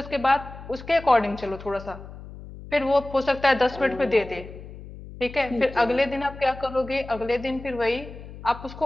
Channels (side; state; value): left; noise; hum, 15 dB below the sound